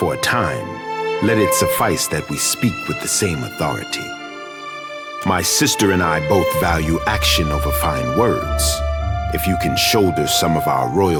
a time, let it suffice that we speak with the same authority. My sister and I both value action over fine words. If you can shoulder some of our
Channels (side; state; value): both; identical; correlation 1.00